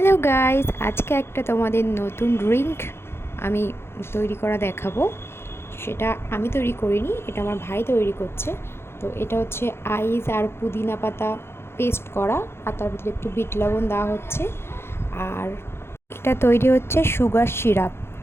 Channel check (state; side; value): late; right; 0.12 ms